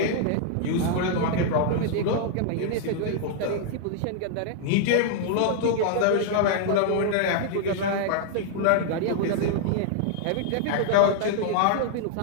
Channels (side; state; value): both; different; correlation -0.01